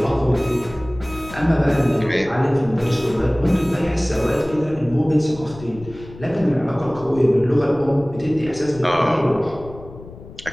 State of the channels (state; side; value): noise; left; rumble, 17 dB below the sound